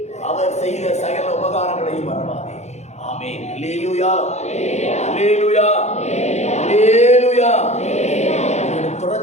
அவர் செய்த சகல உபகாரங்களையும் மறவாதே. ஆமென். அல்லேலூயா, அல்லேலூயா, அல்லேலூயா.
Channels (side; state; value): right; late; 0.33 ms